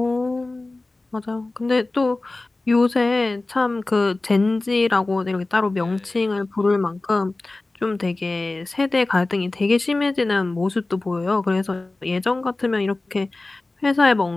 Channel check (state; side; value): quieter; right; 3.1 dB